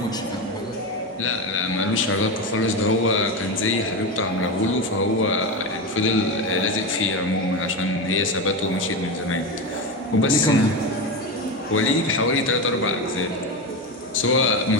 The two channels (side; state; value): both; normal; correlation 0.17